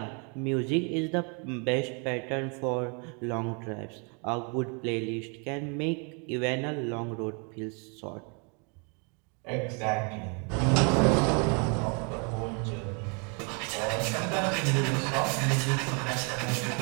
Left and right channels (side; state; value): left; quieter; 35.9 dB